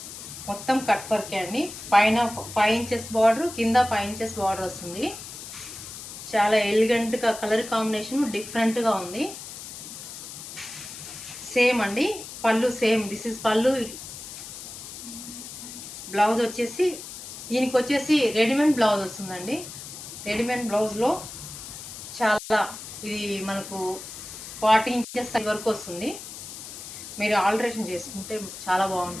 మొత్తం కట్ వర్కే అండి. పైన 5 ఇంచెస్ బార్డర్, కింద 5 ఇంచెస్ బార్డర్ వస్తుంది. చాలా ఎలిగెంట్గా కలర్ కాంబినేషన్ డిఫరెంట్గా ఉంది. సేమ్ అండి. పళ్ళు సేమ్. దిస్ ఇస్ పళ్ళు. బ్లౌజ్ వచ్చేసి దీనికి వచ్చేసి రెడీమేడ్ బ్లౌజ్ వస్తుందండి. రెడీమేడ్ బ్లౌజ్లో చాలా ఇది మనకు 40 ఇంచెస్ వరకు వస్తుంది. మీరు ఆల్టరేషన్ చేసుకుంటే చాలా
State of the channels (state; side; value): noise; left; hiss, 11 dB below the sound